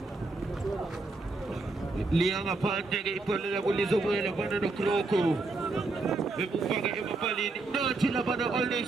Liang apante che pone la bolisa buona fanno no croco e paga e mapali no ci la vanno all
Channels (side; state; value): left; quieter; 3.5 dB